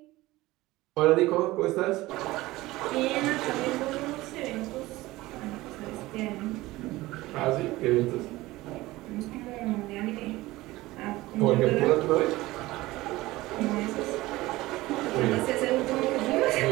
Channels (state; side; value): quieter; left; 18.7 dB